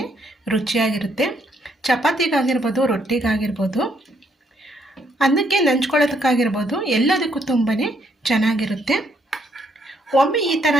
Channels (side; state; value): both; normal; correlation 0.72